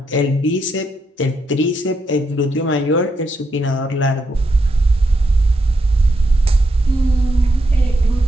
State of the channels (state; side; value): normal; both; correlation 0.80